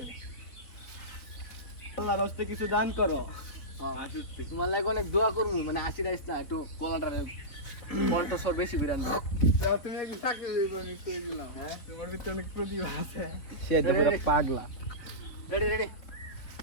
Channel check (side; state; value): right; late; 4.0 ms